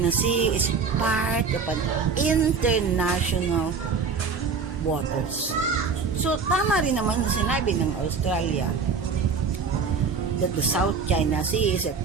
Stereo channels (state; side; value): quieter; left; 5.3 dB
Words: Sea is part of an international waters. So, tama rin naman yung sinabi ng Australia that the South China Sea is a